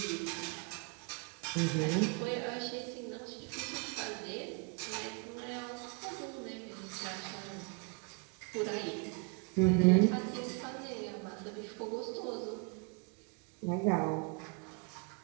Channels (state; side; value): quieter; left; 32.7 dB